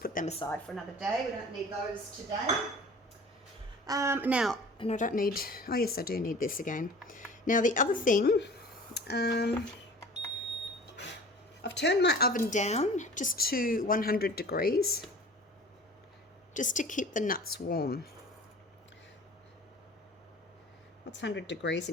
put them aside for another day. We don't need those today. Now, and I don't need, oh yes, I do need this again. Now the other thing, I've turned my oven down just to 100 degrees, just to keep the nuts warm. What's 100 degrees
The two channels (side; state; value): both; normal; correlation 0.43